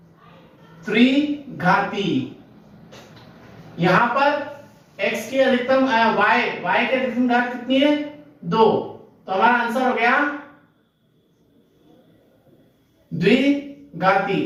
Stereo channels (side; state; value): both; identical; correlation 1.00